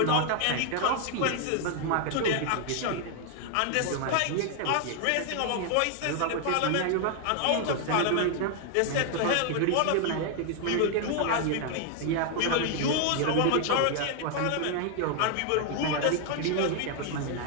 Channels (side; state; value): both; different; correlation 0.00